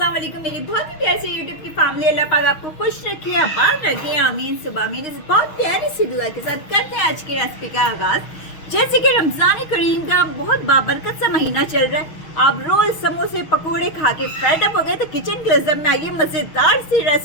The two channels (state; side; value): late; right; 6.3 ms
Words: वालेकुम मेरी बहुत ही प्यारी सी यूट्यूब की फैमिली। अल्लाह पाक आपको खुश रखे, आबाद रखे, आमीन सुबह आमीन। इस बहुत प्यारी सी दुआ के साथ करते हैं आज की रेसिपी का आगाज। जैसे कि रमजान करीम का बहुत बाबरकत सा महीना चल रहा है, आप रोज समोसे पकोड़े खा के फेड अप हो गए तो किचन क्लोजअप में आइए, मजेदार सी